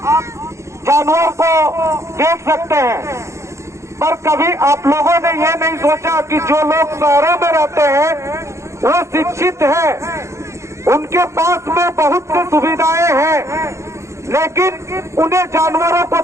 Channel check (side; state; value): left; late; 0.14 ms